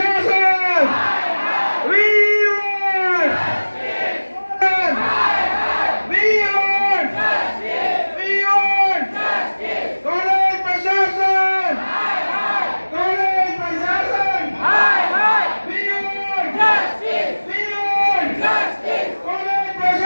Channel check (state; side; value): inverted; both; correlation -1.00